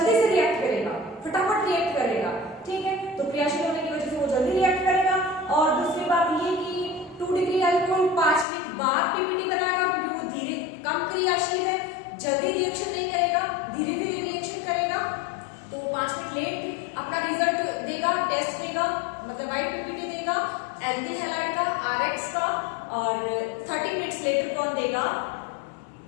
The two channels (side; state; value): right; drops out; at 8.5 s